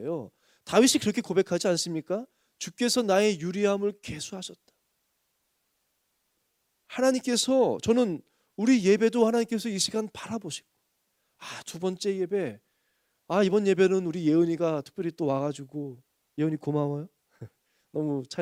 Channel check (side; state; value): both; identical; correlation 1.00